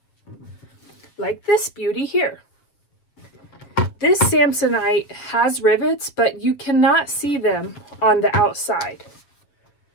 like this beauty here. This Samsonite has rivets, but you cannot see them on the outside.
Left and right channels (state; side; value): late; right; 7.4 ms